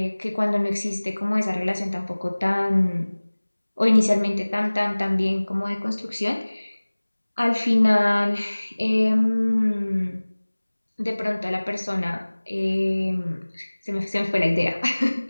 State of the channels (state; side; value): inverted; both; correlation -1.00